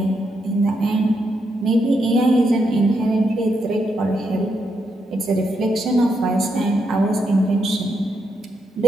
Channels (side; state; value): both; normal; correlation 0.81